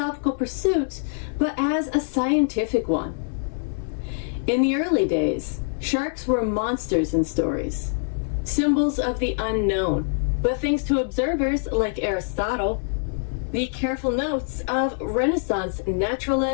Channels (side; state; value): right; silent; 62 dB below the other